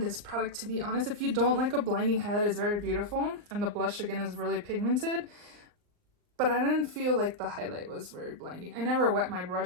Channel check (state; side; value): late; left; 39 ms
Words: this product, to be honest. If you don't like a blinding highlight, it's very beautiful. And the blush, again, is really pigmented. But I didn't feel like the highlight was very blinding. I never wet my